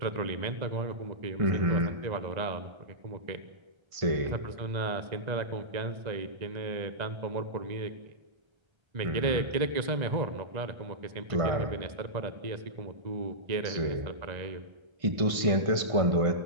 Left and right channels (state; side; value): late; left; 1.5 ms